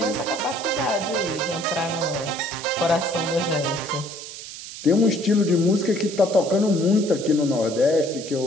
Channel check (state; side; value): noise; right; hiss, 12 dB below the sound